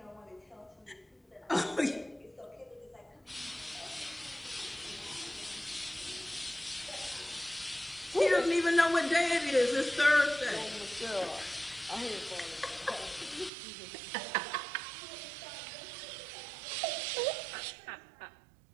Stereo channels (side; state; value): left; drops out; at 13.5 s